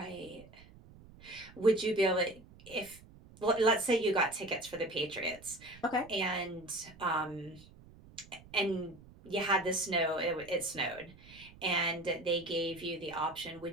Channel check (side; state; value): right; noise; rumble, 21 dB below the sound